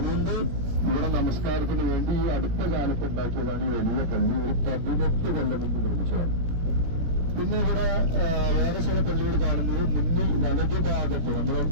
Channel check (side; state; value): left; late; 17 ms